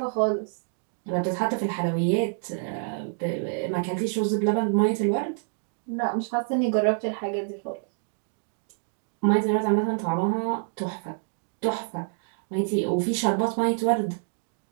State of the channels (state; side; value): silent; left; digital silence